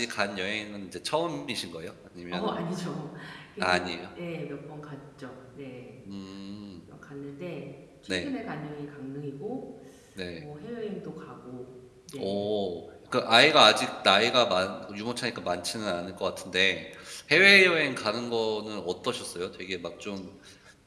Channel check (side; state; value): both; identical; correlation 1.00